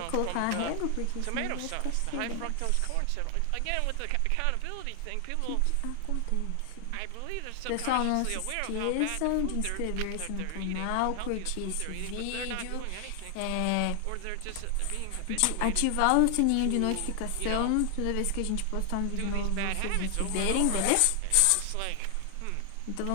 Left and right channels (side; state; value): both; different; correlation 0.00